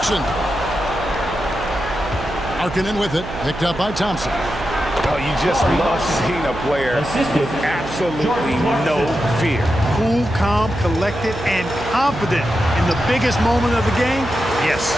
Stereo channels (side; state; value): right; noise; hum, 10 dB below the sound